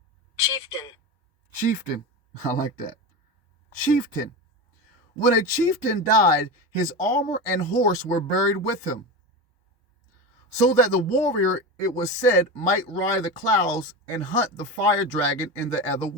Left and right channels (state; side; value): normal; both; correlation 0.23